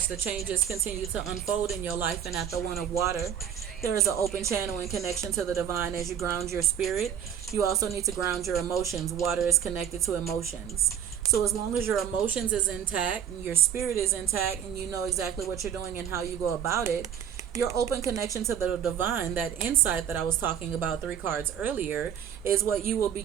the changes continue to unfold in your life. And at the One of Water, there is an open channel and connection to the divine as you ground your spirit. You also need to ground your emotions. Water is connected to emotions. So as long as your emotions is intact and your spirit is intact and you know exactly what you're doing and how you go about it, your open connection to the divine, that insight that I was talking about 3 cards earlier, is what you will be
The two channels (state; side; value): quieter; left; 8.9 dB